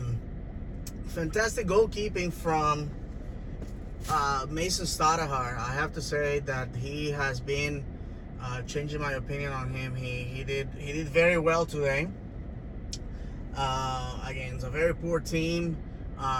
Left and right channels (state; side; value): identical; both; correlation 1.00